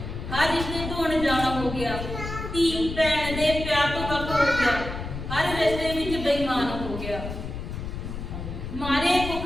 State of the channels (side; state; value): left; noise; rumble, 7 dB below the sound